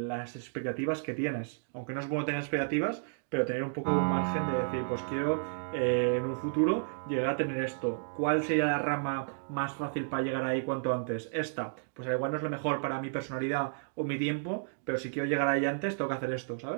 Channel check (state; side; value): silent; left; digital silence